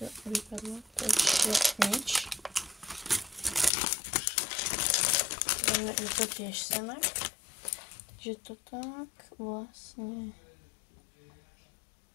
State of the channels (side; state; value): right; drops out; at 3.7 s